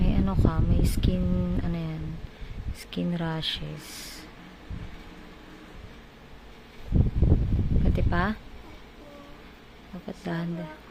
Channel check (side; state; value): both; identical; correlation 1.00